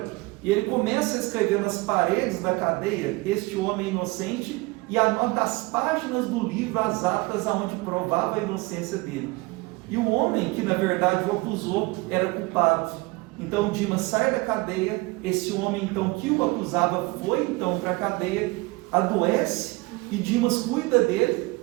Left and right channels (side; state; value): left; quieter; 23.9 dB